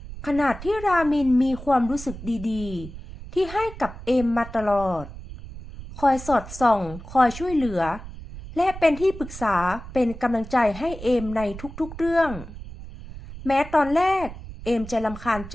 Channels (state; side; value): noise; right; rumble, 13 dB below the sound